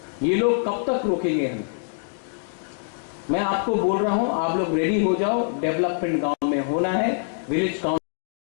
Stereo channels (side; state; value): right; silent; digital silence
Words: ये लोग कब तक रोकेंगे हमें? मैं आपको बोल रहा हूं, आप लोग रेडी हो जाओ। डेवलपमेंट गांव में होना है, विलेज